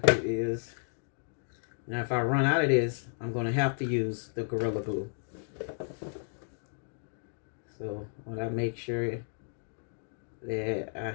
is, now if I run out of this, I'm going to have to use the Gorilla Glue. So when I make sure that I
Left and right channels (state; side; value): silent; right; 56 dB below the other